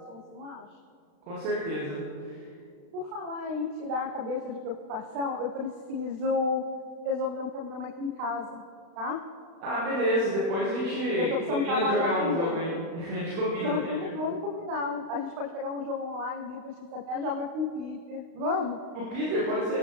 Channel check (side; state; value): left; late; 35 ms